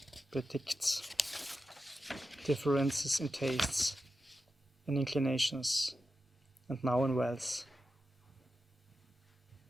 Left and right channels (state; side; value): normal; both; correlation 0.91